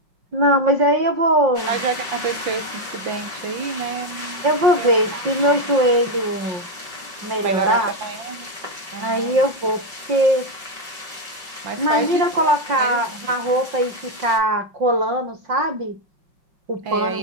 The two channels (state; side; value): late; left; 5.2 ms